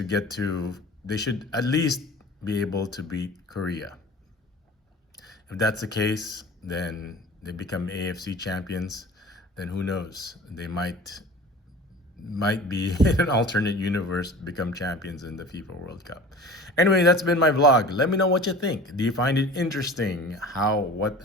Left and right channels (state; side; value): normal; both; correlation 0.41